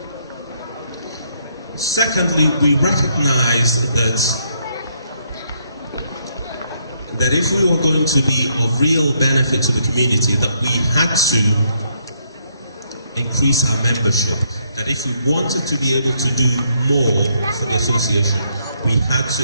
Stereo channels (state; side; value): inverted; both; correlation -0.72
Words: Secondly, we recognized that if we were going to be of real benefit to the community, that we had to increase our membership. That if we wanted to be able to do more for the association, we had to